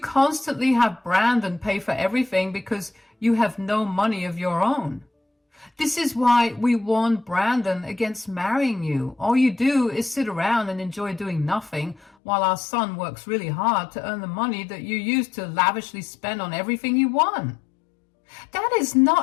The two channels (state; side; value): drops out; right; at 12.1 s